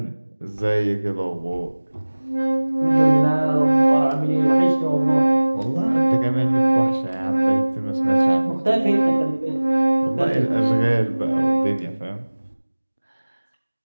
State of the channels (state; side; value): inverted; both; correlation -1.00